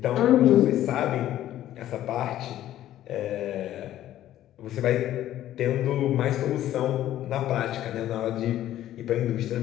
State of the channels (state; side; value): quieter; right; 12.9 dB